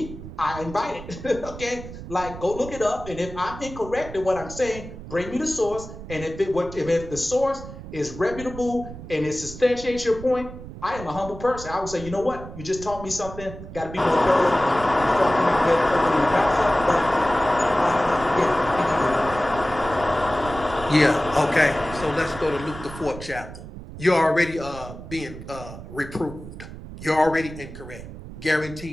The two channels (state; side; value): noise; right; rumble, 13 dB below the sound